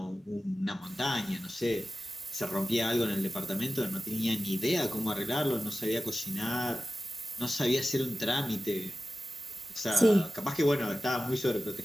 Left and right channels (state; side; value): normal; both; correlation 0.93